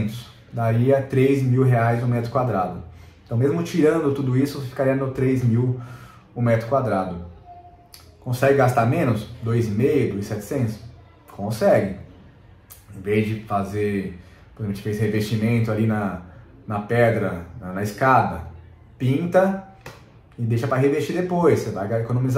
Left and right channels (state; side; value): identical; both; correlation 1.00